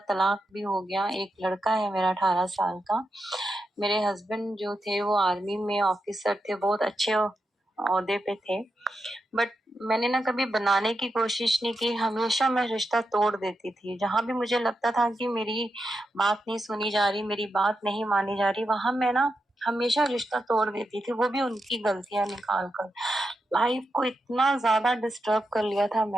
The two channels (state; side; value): normal; both; correlation 0.87